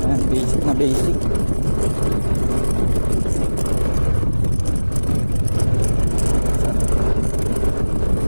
Ayan, basic na basic.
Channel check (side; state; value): both; inverted; correlation -1.00